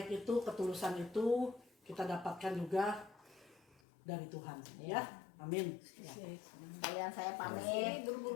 itu, ketulusan itu kita dapatkan juga dari Tuhan ya. Amin. Kalian saya pamit.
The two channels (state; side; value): drops out; right; at 3.8 s